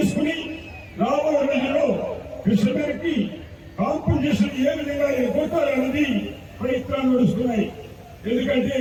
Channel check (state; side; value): identical; both; correlation 1.00